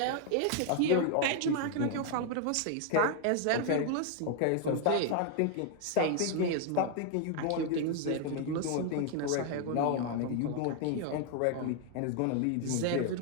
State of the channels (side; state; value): both; different; correlation 0.00